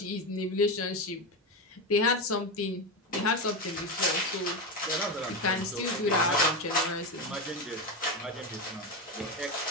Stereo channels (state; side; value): normal; both; correlation 0.15